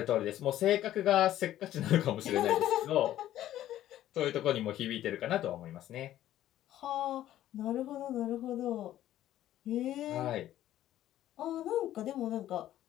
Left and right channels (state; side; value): quieter; right; 13.0 dB